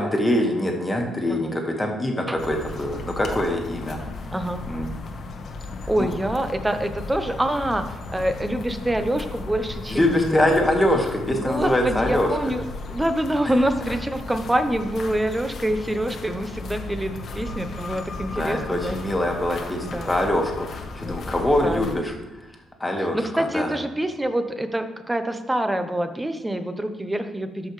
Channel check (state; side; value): normal; both; correlation 0.85